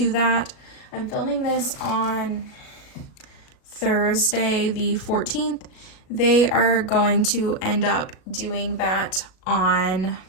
that. I'm filming this on Thursday the 14th. They are going to end up doing that on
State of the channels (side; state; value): right; late; 37 ms